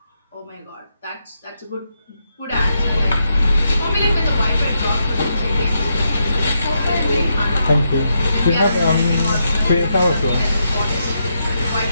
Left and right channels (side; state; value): both; inverted; correlation -0.82